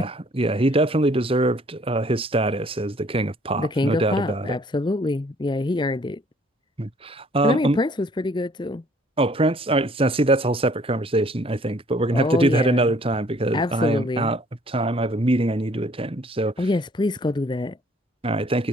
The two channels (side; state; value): both; normal; correlation 0.59